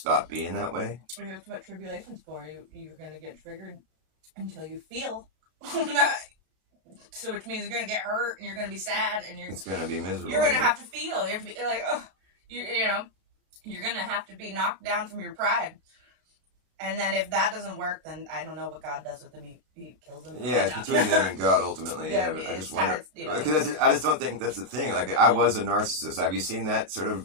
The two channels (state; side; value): late; left; 33 ms